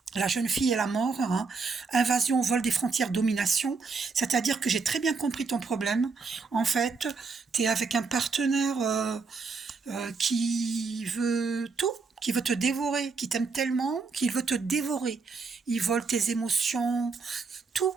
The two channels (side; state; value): left; quieter; 4.6 dB